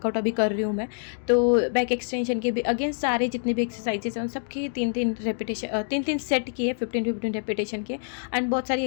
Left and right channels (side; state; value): right; silent; digital silence